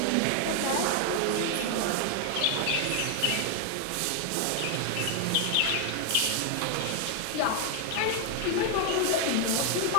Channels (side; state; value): both; different; correlation 0.00